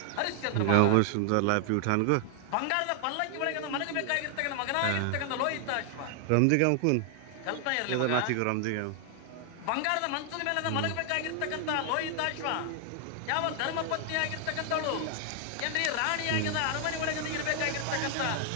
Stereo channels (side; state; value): both; different; correlation 0.00